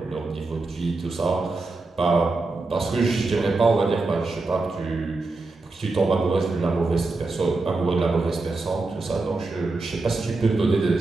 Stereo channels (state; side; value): quieter; left; 3.5 dB